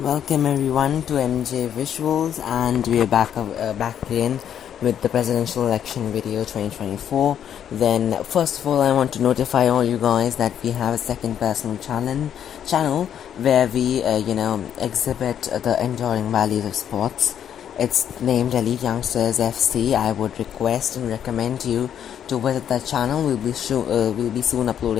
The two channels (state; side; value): quieter; right; 9.3 dB